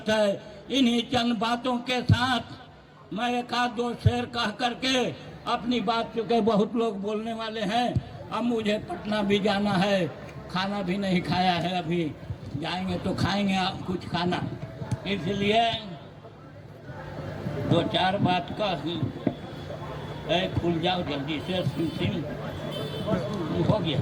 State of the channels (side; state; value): both; identical; correlation 1.00